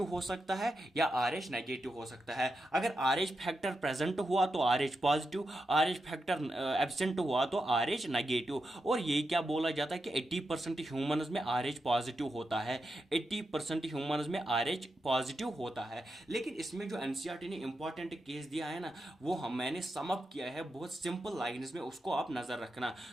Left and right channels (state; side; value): normal; both; correlation 0.87